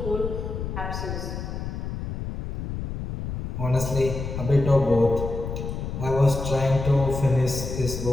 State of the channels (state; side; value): noise; left; rumble, 5 dB below the sound